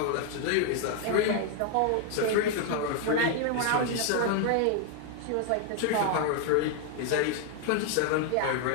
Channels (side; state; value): both; different; correlation 0.01